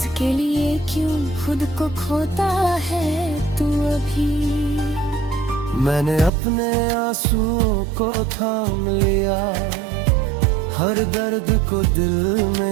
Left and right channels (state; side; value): drops out; left; at 6.3 s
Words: लिए क्यों खुद को खोता है तू अभी। मैंने अपने आंसुओं को थाम लिया, हर दर्द को दिल